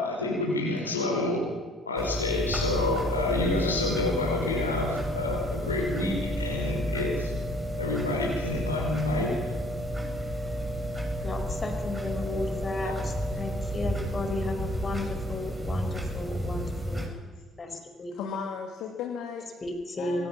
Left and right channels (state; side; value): normal; both; correlation 0.55